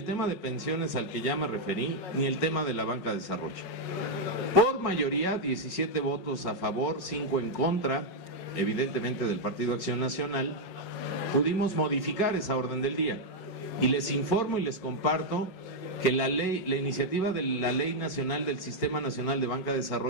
tema de pensiones al que ya me referí, ni el tema de la banca de desarrollo. Por mayoría, 17 votos a favor, 5 en contra, evidentemente del Partido Acción Nacional, pudimos modificar esa orden del día. Y les informo y les comparto que la iniciativa de la Ley Nacional del Sistema Nacional de Banca de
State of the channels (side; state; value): right; late; 5.5 ms